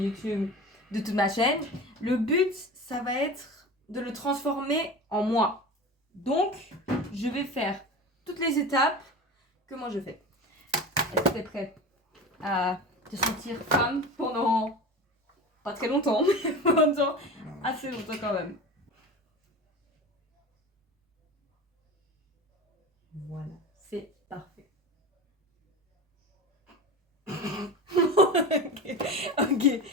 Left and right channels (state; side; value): normal; both; correlation 0.31